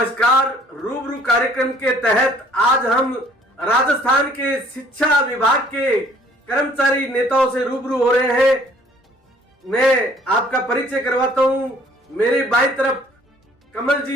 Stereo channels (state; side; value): normal; both; correlation 0.58